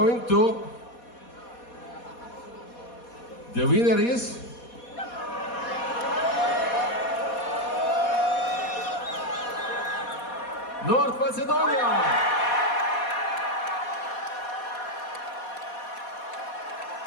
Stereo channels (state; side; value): late; right; 4.2 ms